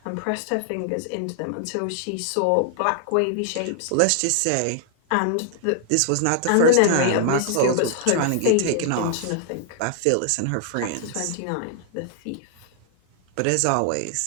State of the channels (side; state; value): both; different; correlation -0.01